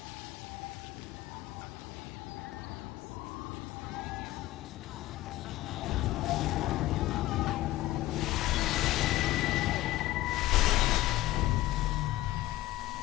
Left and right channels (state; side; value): quieter; right; 16.5 dB